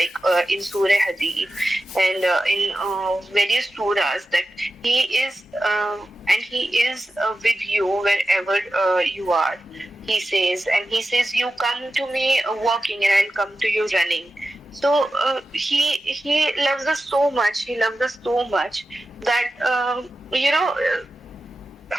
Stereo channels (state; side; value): normal; both; correlation 0.92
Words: in Surah Hadid and in various surahs, that He is with you wherever you are. He says, you come to me walking and I'll come to you running. So he loves us so much. He loves us so much that